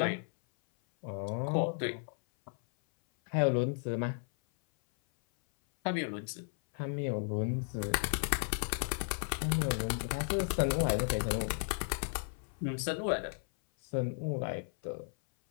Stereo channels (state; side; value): silent; right; 55 dB below the other